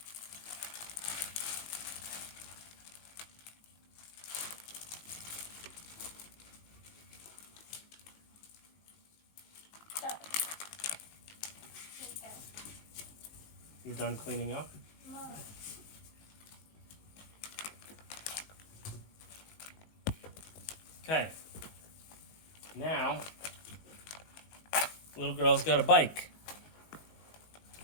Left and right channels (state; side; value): late; right; 19 ms